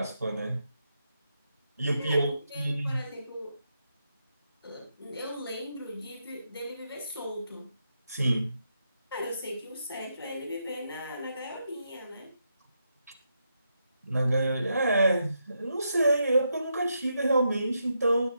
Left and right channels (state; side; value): inverted; both; correlation -0.82